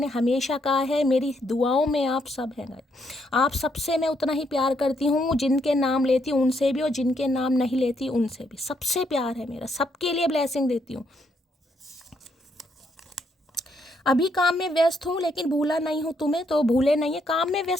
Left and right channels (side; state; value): both; normal; correlation 0.74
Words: हमेशा कहा है, मेरी दुआओं में आप सब हैं, आप सबसे मैं उतना ही प्यार करती हूँ, जिनके नाम लेती हूँ उनसे भी, और जिनके नाम नहीं लेती उनसे भी, सबसे प्यार है मेरा, सबके लिए ब्लेसिंग देती हूँ। अभी काम में व्यस्त हूँ, लेकिन भूला नहीं हूँ तुम्हें, तो भूले नहीं है, काम में